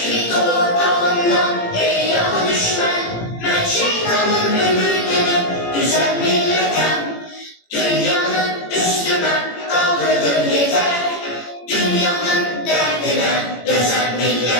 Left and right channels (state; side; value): late; right; 18 ms